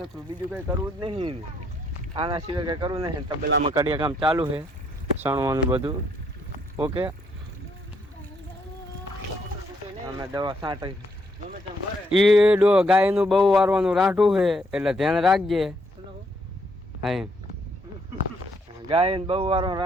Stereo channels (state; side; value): normal; both; correlation 0.72